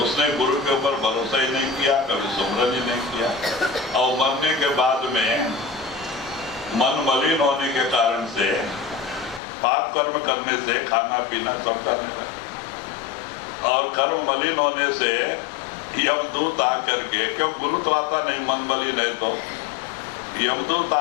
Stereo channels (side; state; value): right; drops out; at 9.4 s